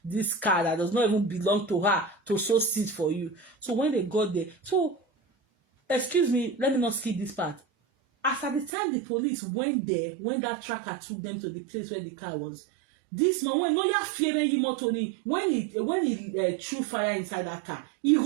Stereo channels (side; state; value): left; drops out; at 8.7 s